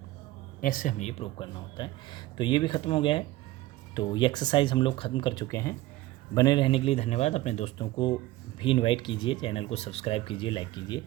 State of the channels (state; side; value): quieter; left; 17.3 dB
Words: ऐसे हमें ये प्रूव करना होता है। तो ये भी ख़त्म हो गया है। तो ये एक्सरसाइज हम लोग ख़त्म कर चुके हैं। बने रहने के लिए धन्यवाद। अपने दोस्तों को भी इनवाइट कीजिए, चैनल को सब्सक्राइब कीजिए, लाइक कीजिए।